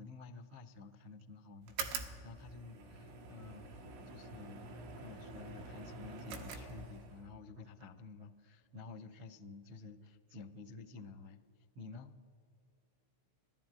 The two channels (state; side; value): late; left; 16 ms